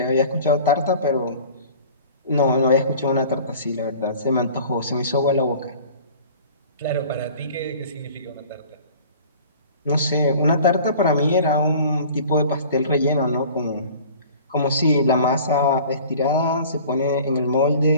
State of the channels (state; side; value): inverted; both; correlation -0.45